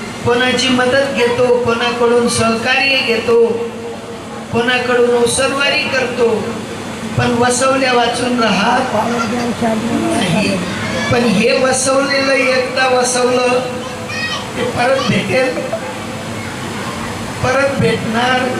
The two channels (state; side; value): identical; both; correlation 1.00